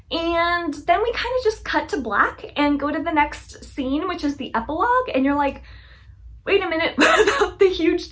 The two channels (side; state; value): both; identical; correlation 1.00